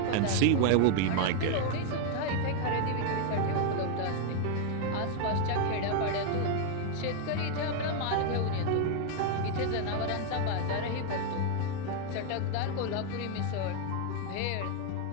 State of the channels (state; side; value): different; both; correlation 0.00